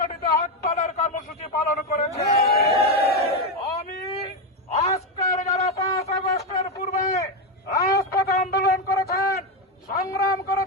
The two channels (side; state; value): both; normal; correlation 0.08